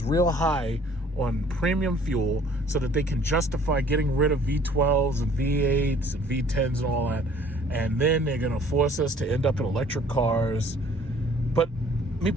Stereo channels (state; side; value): normal; both; correlation 0.55